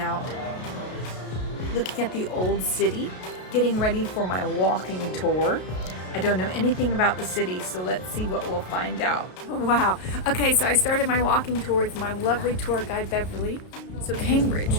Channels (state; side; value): late; right; 33 ms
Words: out, looking at the old city, getting ready for my walking tour. I don't know anything about the city, so let's see what we'll find out. Wow. Okay, so I started my walking tour with my lovely tour guide, Beverly. So